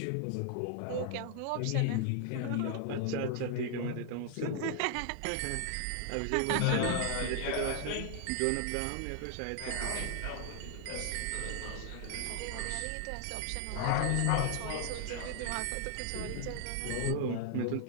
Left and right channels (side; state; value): both; different; correlation 0.00